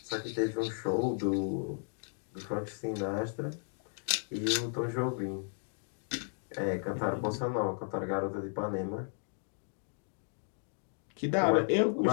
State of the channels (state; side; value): silent; right; 55 dB below the other